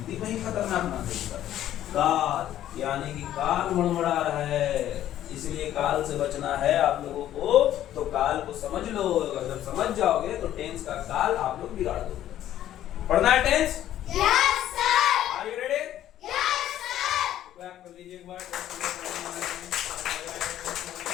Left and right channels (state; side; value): quieter; right; 12.2 dB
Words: में ही खतरनाक ना देगा काल, यानी कि काल मड़मड़ा रहा है, इसलिए काल से बचना है आप लोगों को। तो काल को समझ लो, अगर जब समझ जाओगे तो टेंस का काल आप लोग बिगाड़ दोगे। पढ़ना है tense? Yes sir. Are you ready? Yes sir. Clap कर लीजिए एक बार।